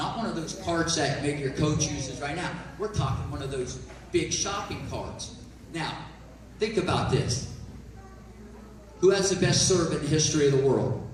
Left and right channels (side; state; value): both; identical; correlation 1.00